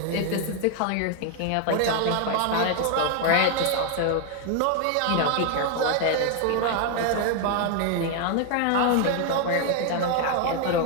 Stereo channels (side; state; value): both; different; correlation 0.01